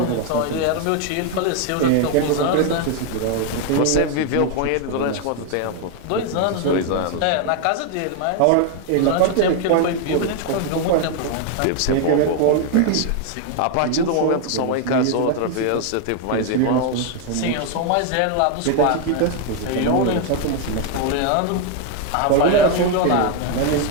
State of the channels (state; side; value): different; both; correlation 0.01